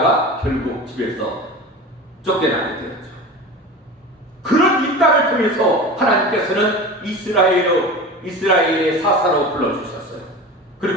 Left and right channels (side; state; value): both; normal; correlation 0.32